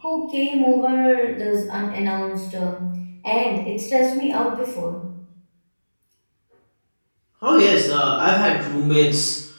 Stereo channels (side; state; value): both; inverted; correlation -1.00